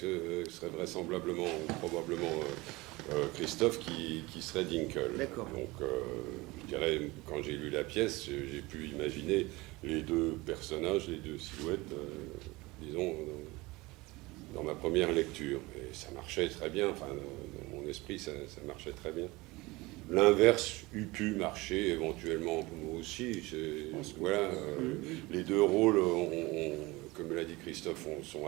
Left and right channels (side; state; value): left; quieter; 22.0 dB